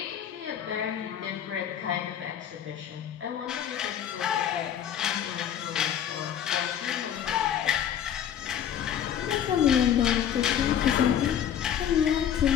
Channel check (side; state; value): right; quieter; 9.5 dB